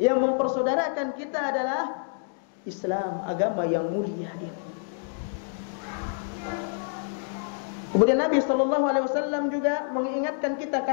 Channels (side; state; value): right; silent; digital silence